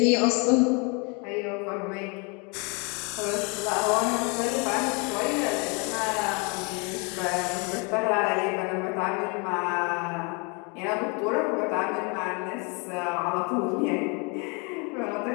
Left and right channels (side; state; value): right; quieter; 32.4 dB